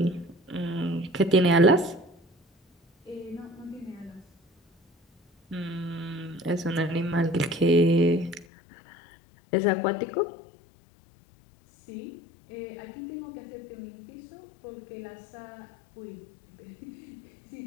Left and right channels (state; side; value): drops out; right; at 8.5 s